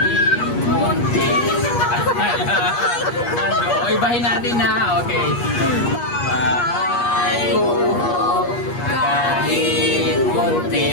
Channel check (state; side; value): late; right; 8.4 ms